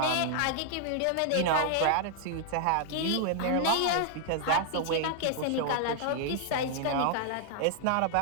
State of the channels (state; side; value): different; both; correlation 0.00